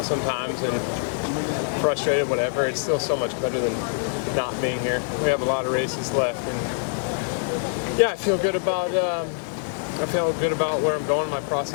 sometimes and frustrated, whatever, it's still so much better than not being here. We have a lot of races left, and yeah, I feel good about where I'm going, my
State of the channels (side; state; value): right; silent; digital silence